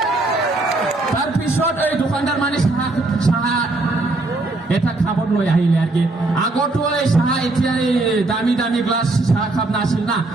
তাৰপিছত এই দোকানদাৰ মানে চাহ এটা খাবত লৈ আহিলে আর কি আগতো এই চাহ এতিয়া এই দামি দামি গ্লাস চাহ খাব নাছিল না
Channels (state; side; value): quieter; left; 3.0 dB